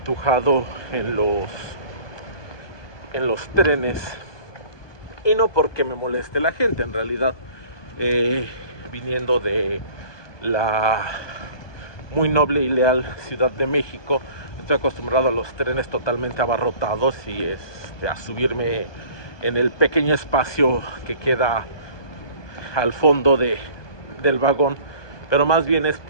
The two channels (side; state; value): right; late; 1.2 ms